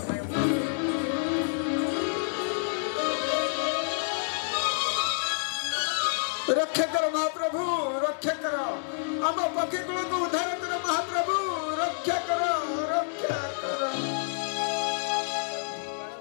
रक्षा करो महाप्रभु रक्षा करो आम पक्षी कुल को उद्धार करो महाप्रभु रक्षा करो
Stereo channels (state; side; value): silent; right; digital silence